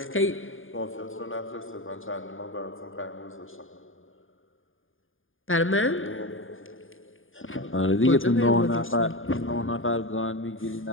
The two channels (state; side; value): late; right; 0.59 ms